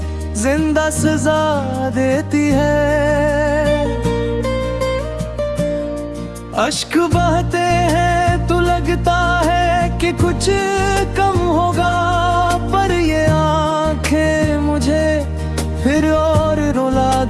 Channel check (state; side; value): identical; both; correlation 1.00